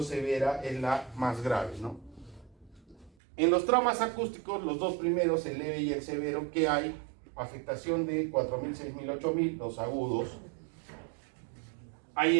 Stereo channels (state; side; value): drops out; left; at 3.1 s